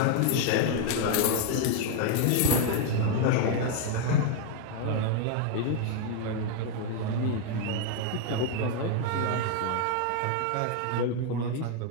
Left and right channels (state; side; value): different; both; correlation 0.00